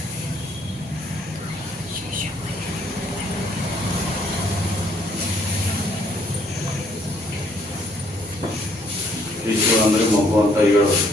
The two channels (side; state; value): both; normal; correlation 0.65